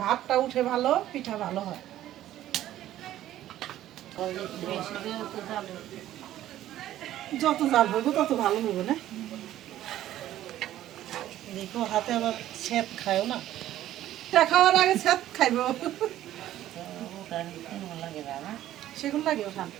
ভাতটা উঠে ভালো, পিঠা ভালো হয়। যত জাল হইব তত ভালো হইব না। দেখো হাতে আবার স্যাঁত খায়ও না, এটা খাওয়ার আগে স্যাঁত খাইব। সেগুলো লাগে ওঠান,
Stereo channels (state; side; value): quieter; left; 13.1 dB